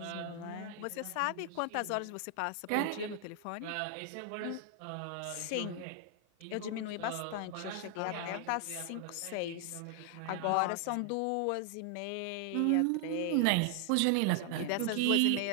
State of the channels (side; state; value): both; different; correlation 0.00